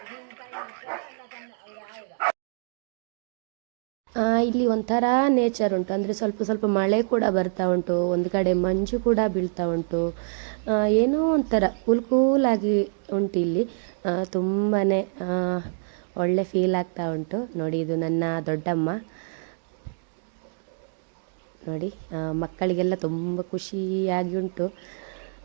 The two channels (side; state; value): left; silent; digital silence